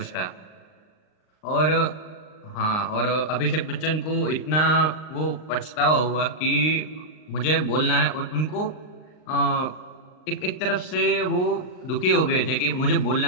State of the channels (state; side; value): late; right; 39 ms